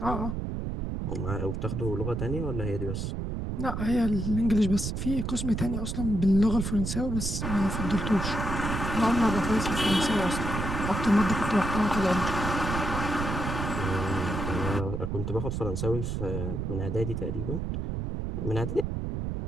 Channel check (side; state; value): right; noise; rumble, 3 dB below the sound